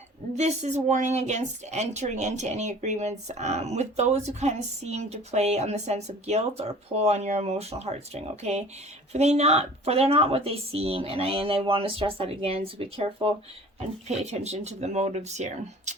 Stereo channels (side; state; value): both; normal; correlation 0.46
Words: This is warning against entering into any agreements with those who kind of seem to play on the sense of guilt or pull on your emotional heartstring, okay? For they're not what they seem, and I want to stress that again, so be careful and pay attention to the motives here.